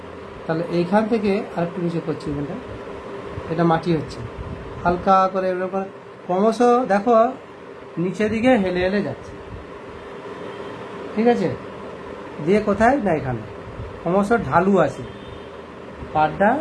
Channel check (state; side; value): identical; both; correlation 1.00